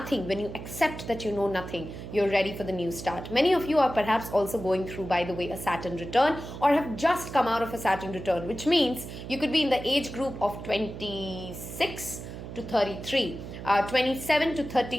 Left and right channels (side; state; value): right; noise; hum, 10 dB below the sound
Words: when you accept that you know nothing, you're ready for the new start. Many of you are perhaps also going through, by the way, a Saturn return, or have just come out of a Saturn return, which means you could be in the age group of 26 to 33. 27 to